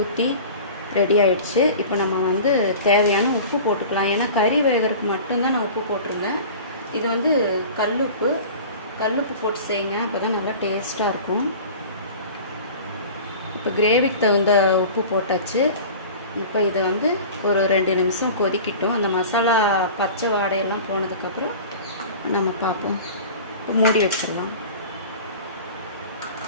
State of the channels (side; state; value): both; inverted; correlation -0.38